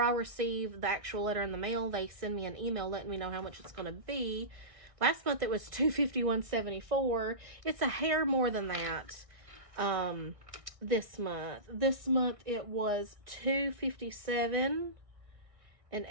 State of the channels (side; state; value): left; late; 1.6 ms